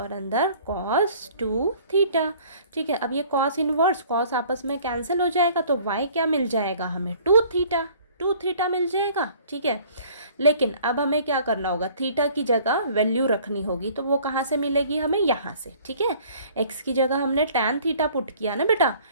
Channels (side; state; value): both; inverted; correlation -0.53